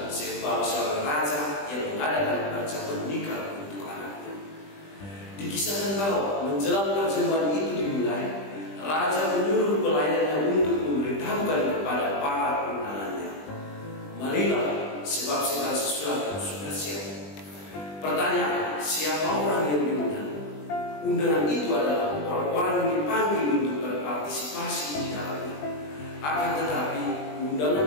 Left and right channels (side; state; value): right; late; 20 ms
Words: sebab seorang raja yang mengadakan perjamuan nikah untuk anaknya. Dikisahkan bahwa menjelang perjamuan itu dimulai, raja menyuruh pelayannya untuk memberitahukan kepada para undangannya, marilah, sebab segala sesuatu sudah siap. Pertanyaan, siapa orang yang diundang? Undangan itu adalah orang-orang yang dipanggil untuk berpartisipasi di dalamnya. Akan tetapi, undangan